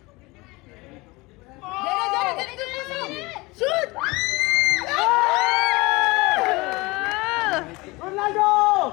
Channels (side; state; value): right; quieter; 23.3 dB